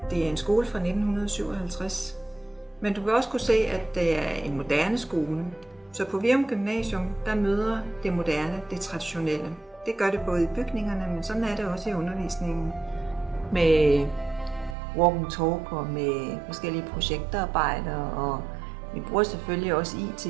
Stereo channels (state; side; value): drops out; left; at 14.8 s